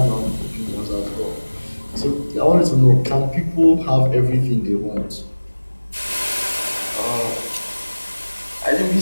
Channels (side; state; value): both; inverted; correlation -1.00